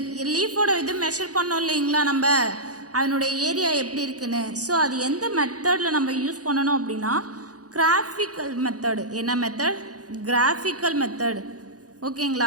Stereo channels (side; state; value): left; late; 0.67 ms